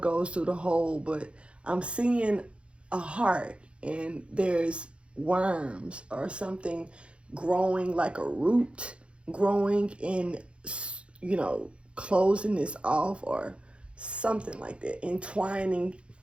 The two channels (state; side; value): late; left; 0.059 ms